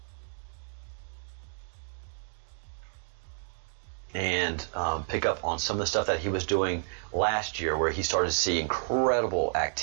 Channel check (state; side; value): silent; left; digital silence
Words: pick up on some of the stuff that he was doing last year, where he started to see incredible